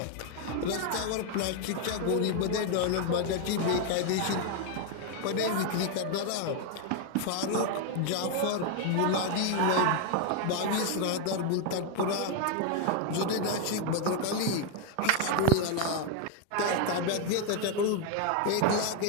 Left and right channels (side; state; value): both; different; correlation 0.01